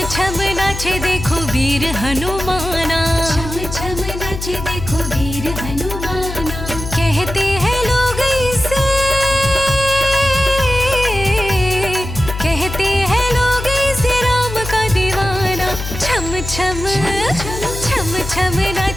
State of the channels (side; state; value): left; noise; hum, 8 dB below the sound